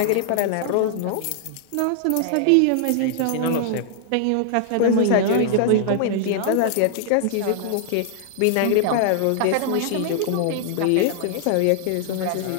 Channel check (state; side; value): different; both; correlation 0.00